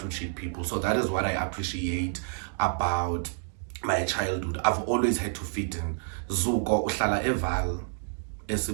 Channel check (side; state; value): left; silent; digital silence